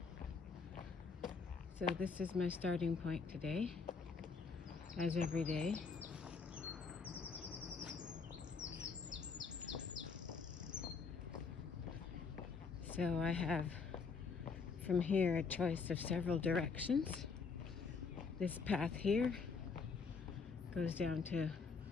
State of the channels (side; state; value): right; quieter; 5.1 dB